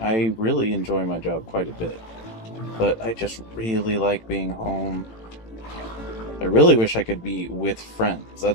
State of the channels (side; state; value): right; late; 18 ms